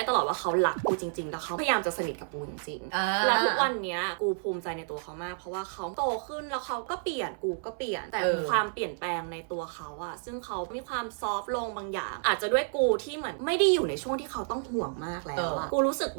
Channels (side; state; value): left; silent; 58 dB below the other